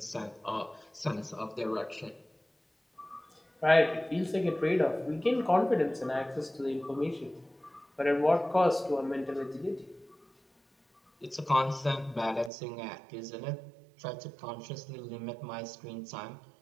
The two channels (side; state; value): left; drops out; at 12.5 s